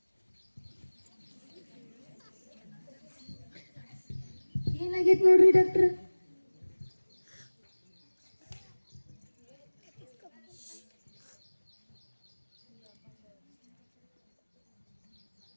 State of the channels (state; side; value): inverted; both; correlation -1.00